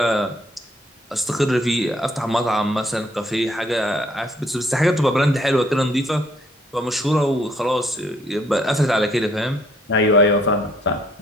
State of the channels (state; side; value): normal; both; correlation 0.65